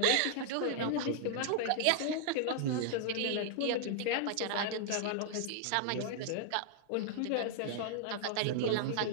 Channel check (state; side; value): different; both; correlation -0.01